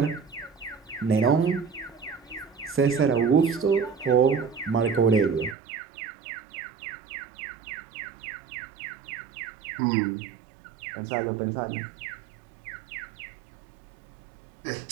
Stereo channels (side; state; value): left; drops out; at 5.6 s